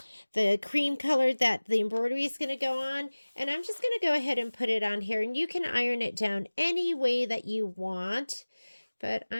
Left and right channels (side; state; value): both; inverted; correlation -1.00